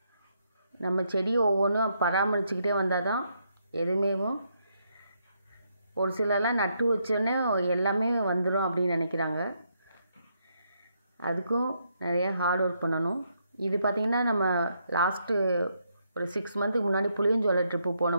நம்ம செடி ஒவ்வொன்றும் பராமரிச்சுக்கிட்டே வந்தால் தான் எதுவுமே. ஒரு சிலர்லாம் நட்டு வச்சோடனே எல்லாமே வந்துடும் அப்படின்னு நினைக்கிறாங்க. அதுக்கும் நிறைய ஹார்ட் ஒர்க் பண்ணணும். இது பார்த்திங்கன்னா நம்ம லாஸ்ட்டு ஒரு 6 மந்த்துக்கு முன்னாடி புளியஞ்சோலை ட்ரிப்பு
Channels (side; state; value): both; inverted; correlation -0.77